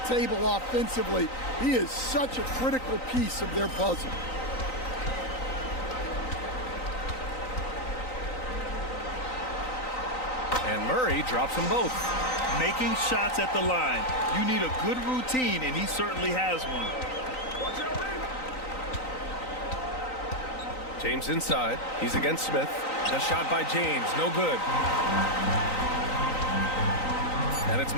table offensively. He is such a critical piece of their puzzle. And Murray drops them both. Making shots at the line. You need a good routine, and he certainly has one. James inside. He's against Smith. The shot by James, no good. And it's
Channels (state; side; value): late; right; 3.9 ms